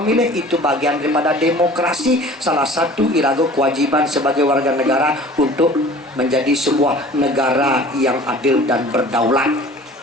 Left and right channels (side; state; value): both; normal; correlation 0.45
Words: itu bagian daripada demokrasi salah satu irago kewajiban sebagai warga negara untuk menjadi sebuah negara yang adil dan berdaulat.